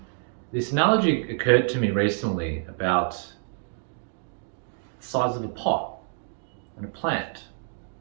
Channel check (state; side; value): silent; left; 60 dB below the other